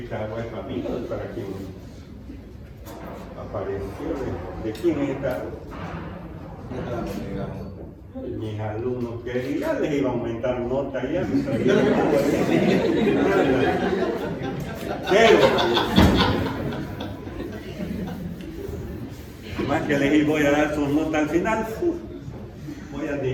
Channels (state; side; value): identical; both; correlation 1.00